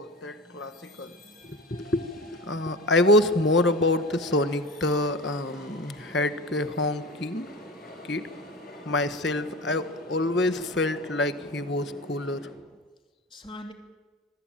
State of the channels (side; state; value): both; normal; correlation 0.31